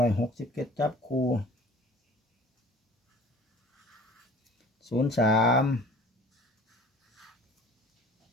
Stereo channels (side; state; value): both; normal; correlation 0.47